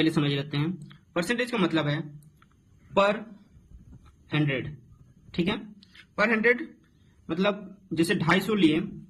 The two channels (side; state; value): both; identical; correlation 1.00